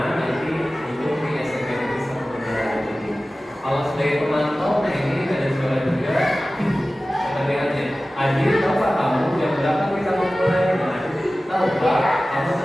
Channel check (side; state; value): both; normal; correlation 0.96